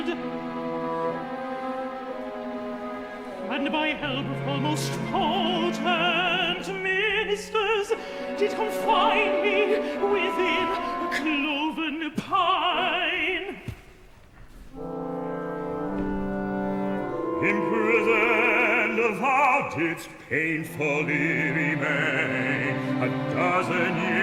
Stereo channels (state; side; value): identical; both; correlation 1.00